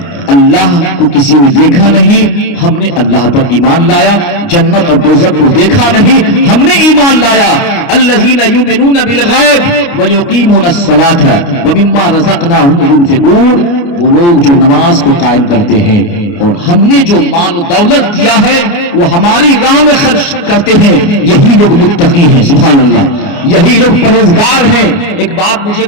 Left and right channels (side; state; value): right; late; 29 ms